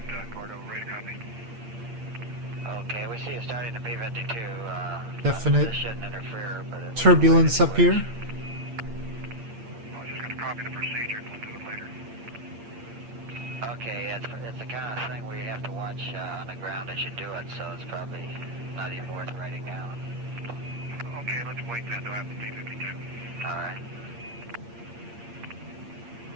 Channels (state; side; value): late; left; 8.7 ms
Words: radio copy. Okay, we see you starting to P-52. Definite This shouldn't interfere with it. turbulence up here. I'm just going to copy the procedure and we'll do it later. Okay, it's the kind of thing where you have to watch on the ground as you do it, so it's probably not even worth writing down. Okay, let's wait then to have the P-52. All right.